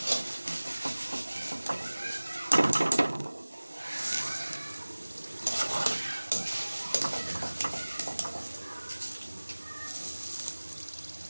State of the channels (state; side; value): inverted; both; correlation -1.00